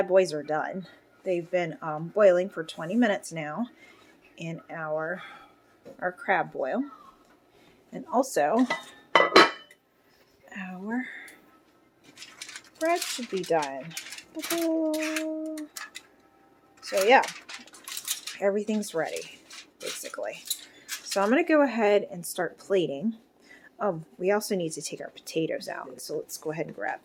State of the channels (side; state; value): both; identical; correlation 1.00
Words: boys are done. They've been boiling for 20 minutes now in our crab boil. And also, our bread should be done. So yeah, everything's ready, basically. So I'm going to go ahead and start plating. Oh, we also need to take our potatoes out. So let's go ahead and grab